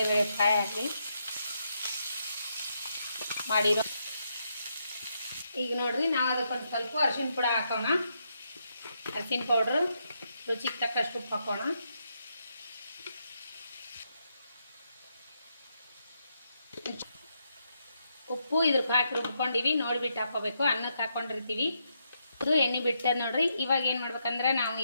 ಫ್ರೈ ಆಗಲಿ ಮಾಡಿರೋ. ಈಗ ನೋಡ್ರಿ ನಾವು ಅದಕ್ಕೊಂದು ಸ್ವಲ್ಪ ಅರಿಶಿನ ಪುಡಿ ಹಾಕೋಣ. ಅರಿಶಿನ ಪೌಡ್ರು, ರುಚಿಗೆ ತಕ್ಕಷ್ಟು ಉಪ್ಪು ಹಾಕೋಣ. ಉಪ್ಪು ಇದ್ರಕ್ಕೆ ಹಾಕಿ ರುಬ್ಕೊಂಡಿವಿ, ನೋಡಿಬಿಟ್ಟು ಹಾಕೋಬೇಕು. ಅನ್ನಕ್ಕೆ ಹಾಕೊಂಡಿರ್ತೀವಿ. ಅದು ಎಣ್ಣೆ ಬಿಟ್ಟದ ನೋಡ್ರಿ. ಇವಾಗ ಏನು ಮಾಡ್ಬೇಕಂದ್ರೆ ನಾವು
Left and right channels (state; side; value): inverted; both; correlation -0.79